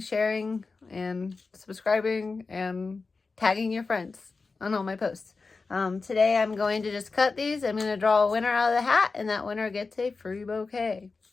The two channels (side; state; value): right; quieter; 4.2 dB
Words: sharing, and subscribing, and tagging your friends on all my posts. Today I'm going to just cut these. I'm going to draw a winner out of the hat, and that winner gets a free bouquet.